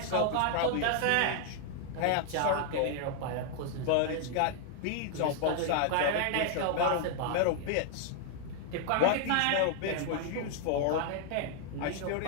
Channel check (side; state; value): both; different; correlation 0.00